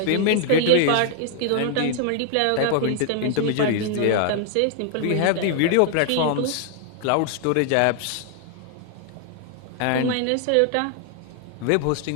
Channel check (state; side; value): different; both; correlation 0.00